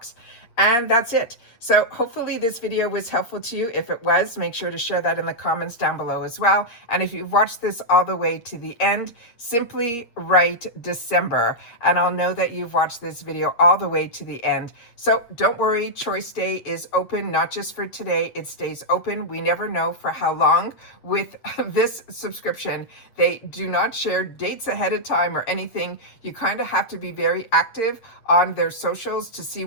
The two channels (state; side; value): late; right; 8.5 ms